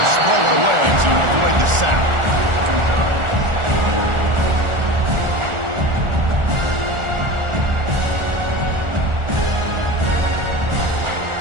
throw it away to avoid the sack.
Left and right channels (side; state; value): left; late; 1.4 ms